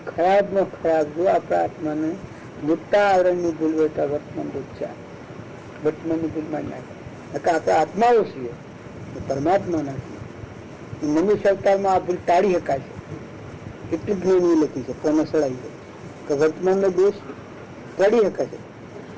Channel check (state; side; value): identical; both; correlation 1.00